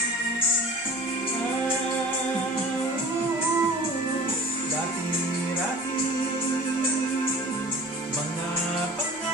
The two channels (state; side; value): normal; both; correlation 0.42